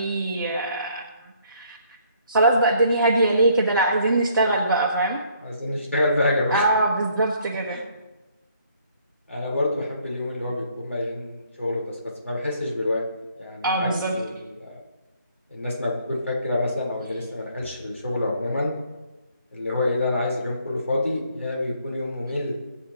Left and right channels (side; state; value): both; inverted; correlation -0.65